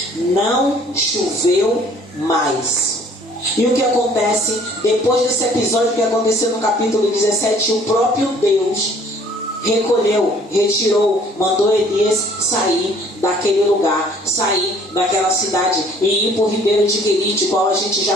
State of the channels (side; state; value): both; normal; correlation 0.56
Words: Não choveu mais. E o que acontece depois desse episódio que aconteceu no capítulo 17? O próprio Deus retirou, mandou Elias sair daquele lugar, sair daquela cidade e ir para o ribeiro de Querite, qual a gente já